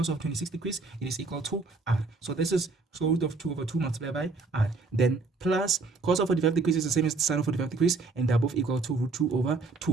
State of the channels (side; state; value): left; quieter; 3.9 dB